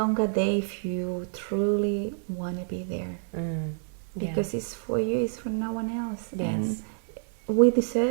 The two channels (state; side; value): silent; left; digital silence